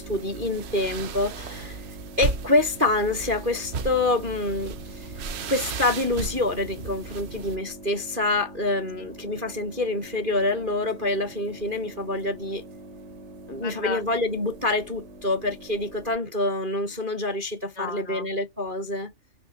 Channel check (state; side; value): late; left; 2.5 ms